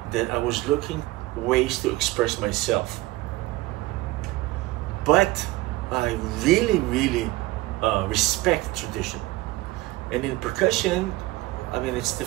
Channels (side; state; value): left; quieter; 19.2 dB